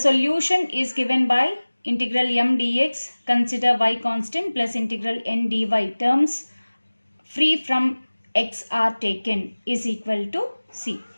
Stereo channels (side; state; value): both; inverted; correlation -1.00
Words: is given by integral m dx, consider y constant, plus integral n dy, terms free from x are taken, is equal to c.